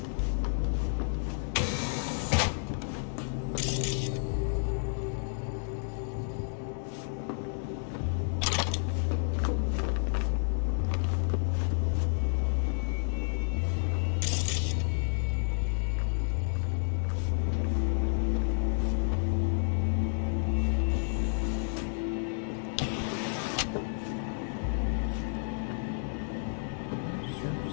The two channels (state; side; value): silent; right; digital silence